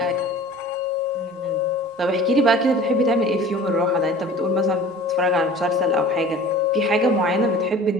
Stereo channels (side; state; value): both; normal; correlation 0.43